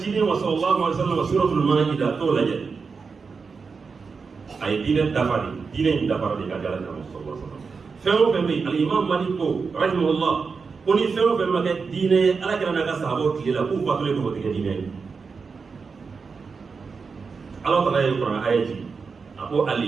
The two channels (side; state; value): left; quieter; 5.0 dB